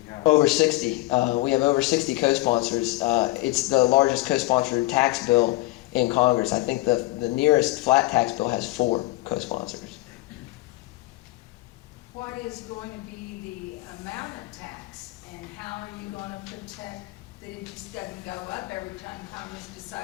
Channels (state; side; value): quieter; right; 19.7 dB